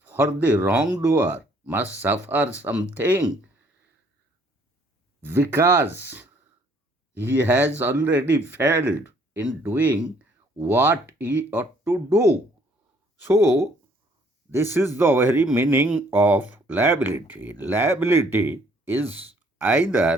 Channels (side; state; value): both; normal; correlation 0.62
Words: For the wrongdoer must suffer something because he has already failed in doing what he ought to do. So, this is the very meaning of liability. Liability is